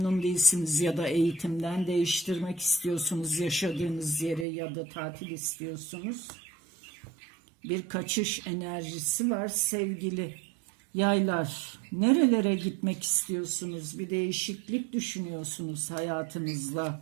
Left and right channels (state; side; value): drops out; left; at 4.5 s